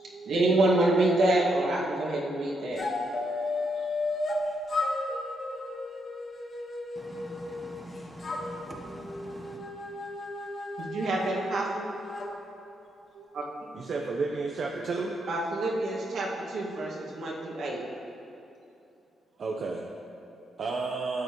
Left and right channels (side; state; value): both; normal; correlation 0.78